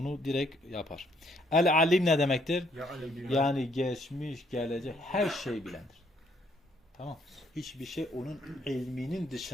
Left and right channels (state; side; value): normal; both; correlation 0.68